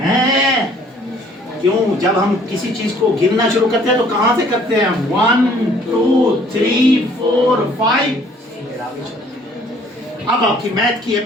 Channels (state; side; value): normal; both; correlation 0.58